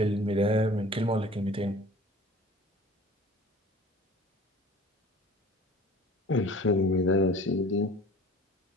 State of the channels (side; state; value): both; normal; correlation 0.45